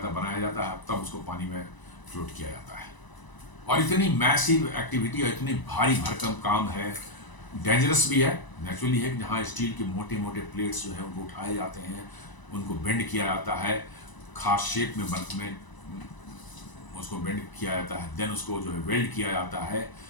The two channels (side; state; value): right; late; 1.0 ms